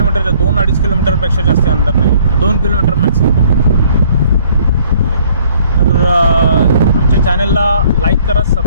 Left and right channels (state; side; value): inverted; both; correlation -0.59